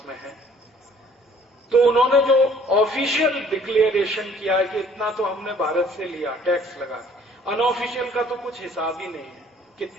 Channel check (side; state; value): both; normal; correlation 0.56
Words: में है। तो उन्होंने जो ऑफिशियल डिक्लेरेशन किया है कि इतना तो हमने भारत से लिया टैक्स लगा के, अनऑफिशियल का तो कुछ हिसाब ही नहीं है